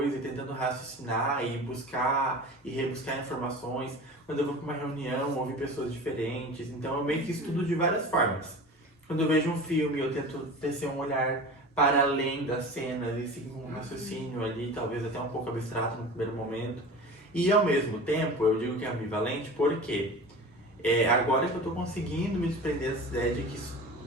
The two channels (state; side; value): normal; both; correlation 0.35